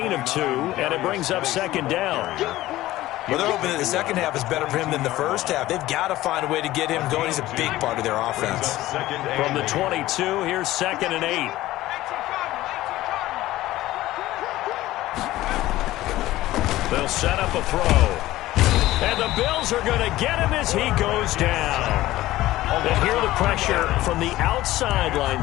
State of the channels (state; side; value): quieter; right; 16.2 dB